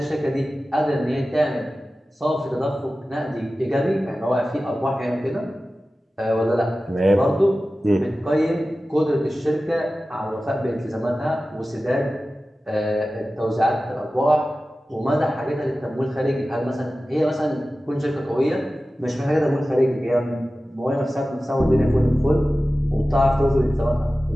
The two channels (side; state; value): both; normal; correlation 0.95